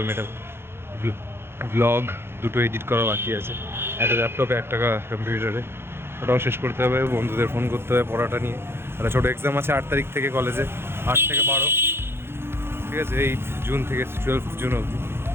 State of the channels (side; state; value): left; late; 0.11 ms